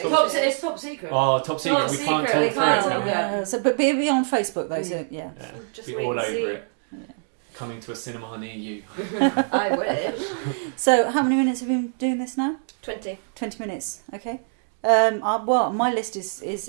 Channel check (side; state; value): left; silent; digital silence